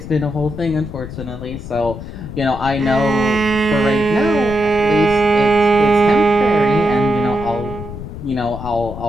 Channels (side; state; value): left; noise; rumble, 10 dB below the sound